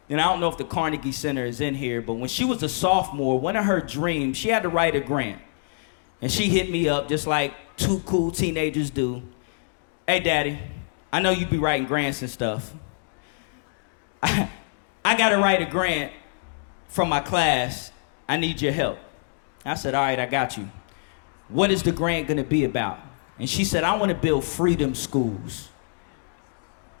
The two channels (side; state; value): right; silent; digital silence